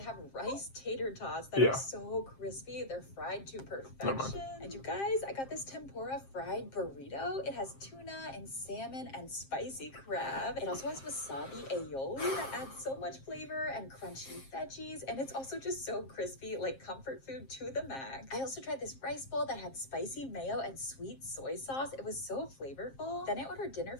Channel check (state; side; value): late; right; 7.5 ms